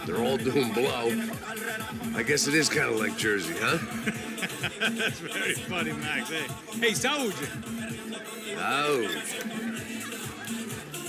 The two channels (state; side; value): identical; both; correlation 1.00